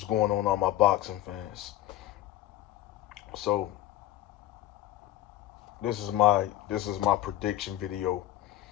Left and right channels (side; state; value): right; quieter; 14.2 dB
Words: going on, all my boxing fans? So this is my prediction video.